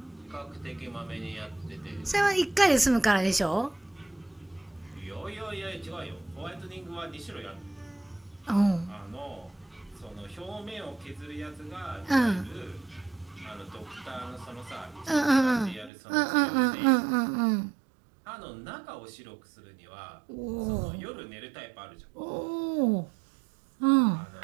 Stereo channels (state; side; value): drops out; left; at 15.9 s